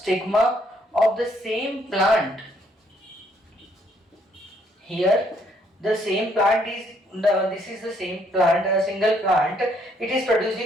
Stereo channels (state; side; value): normal; both; correlation 0.69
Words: of the same plant. Here the same plant is this is the same plant, a single plant. It is